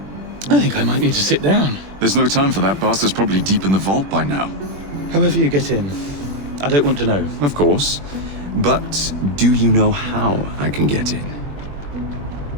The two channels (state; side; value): late; left; 21 ms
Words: I think I might need to sit down. There's no time for that. Bastard's probably deep in the vault by now. However you get in, I don't want to know. Of course. But do you know how I can get in?